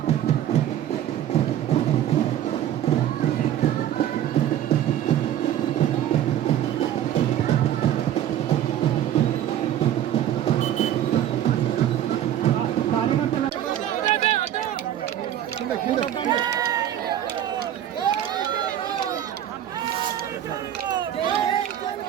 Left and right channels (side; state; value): left; quieter; 11.3 dB